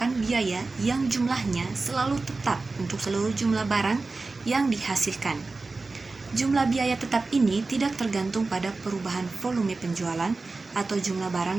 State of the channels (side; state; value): left; quieter; 3.7 dB